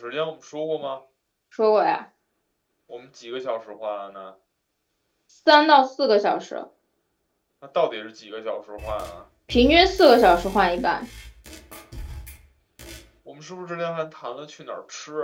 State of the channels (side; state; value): both; identical; correlation 1.00